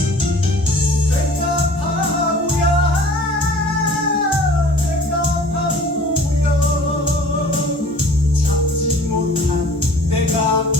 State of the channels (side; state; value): both; normal; correlation 0.48